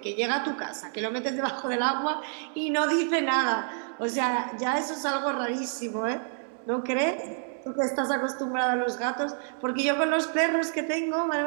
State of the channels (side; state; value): left; silent; 59 dB below the other